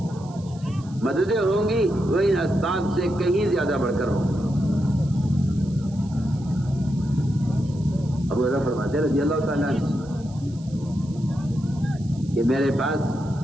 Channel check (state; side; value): noise; right; hiss, 25 dB below the sound